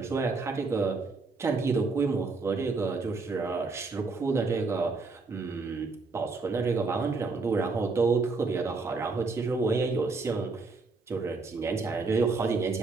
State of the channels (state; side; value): quieter; left; 4.0 dB